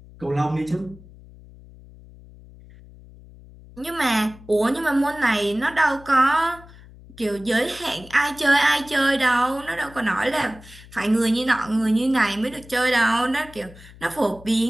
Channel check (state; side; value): noise; left; hum, 21 dB below the sound